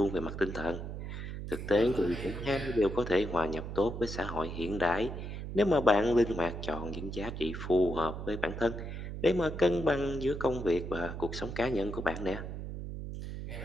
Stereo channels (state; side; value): noise; right; hum, 7 dB below the sound